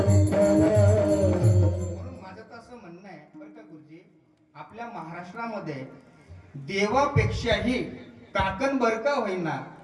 माझं तर असं म्हणणं आहे बरं का गुरुजी, आपल्या महाराष्ट्रामध्ये देवापेक्षाही काकणबरका होईना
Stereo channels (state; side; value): identical; both; correlation 1.00